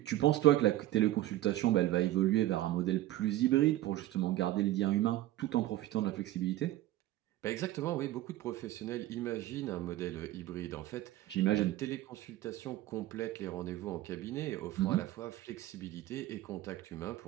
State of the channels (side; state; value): left; quieter; 15.0 dB